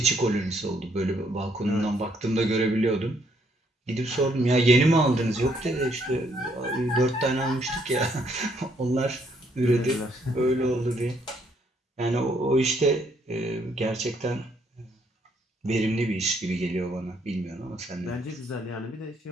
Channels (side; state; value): both; normal; correlation 0.70